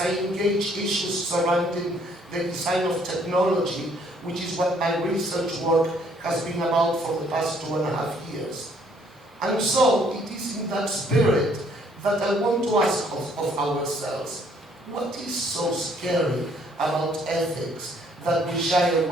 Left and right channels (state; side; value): normal; both; correlation 0.64